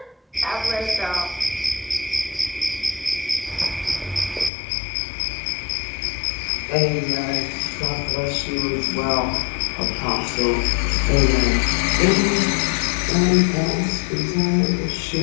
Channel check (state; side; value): drops out; right; at 4.5 s